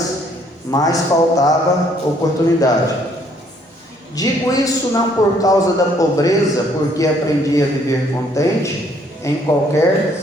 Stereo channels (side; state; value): both; normal; correlation 0.65